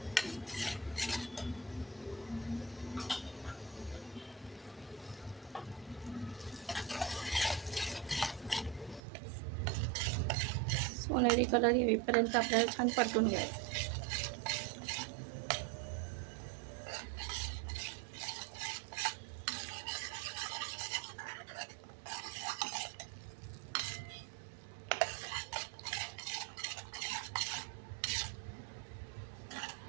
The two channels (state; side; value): drops out; left; at 9.0 s